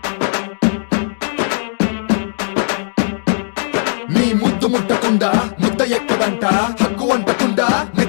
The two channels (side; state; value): right; silent; digital silence